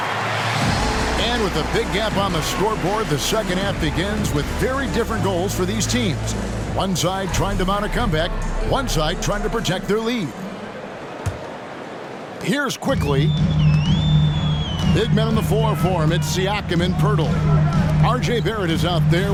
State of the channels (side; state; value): both; identical; correlation 1.00